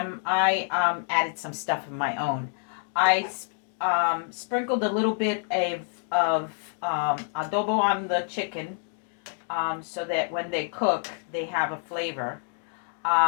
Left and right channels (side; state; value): right; silent; 60 dB below the other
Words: I added some stuff of my own. I sprinkled a little bit of adobo on the chicken so that when they cook, they have a flavor.